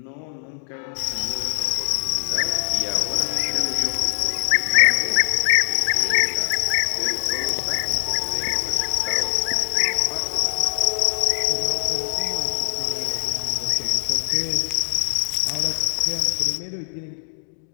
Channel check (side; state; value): right; silent; digital silence